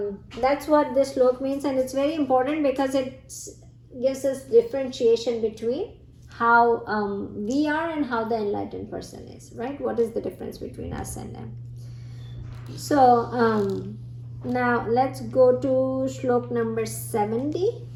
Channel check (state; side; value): identical; both; correlation 1.00